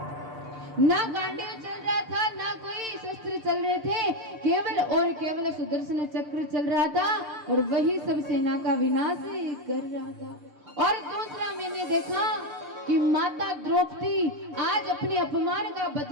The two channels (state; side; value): late; left; 6.7 ms